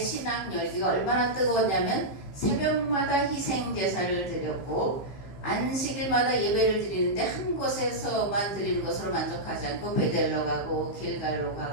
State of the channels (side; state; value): right; late; 15 ms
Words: 열기가 얼마나 뜨거웠냐면 새벽마다 희생 제사를 드렸고 안식일마다 예배를 드리는데 한 곳에서만 드리는 것으로 만족하지 않고 베델로 가고 길갈로